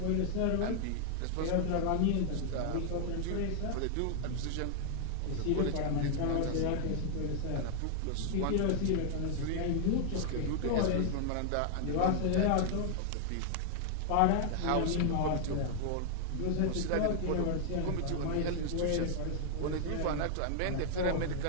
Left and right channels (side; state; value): both; different; correlation 0.00